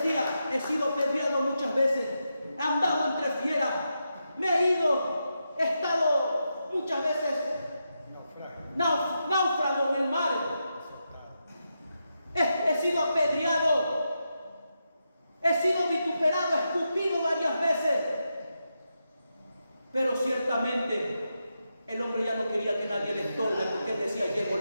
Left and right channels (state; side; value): inverted; both; correlation -0.86